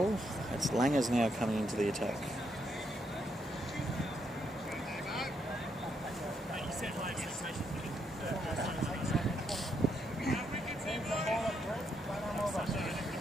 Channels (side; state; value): both; normal; correlation 0.77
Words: it's Langers now coming into the attack.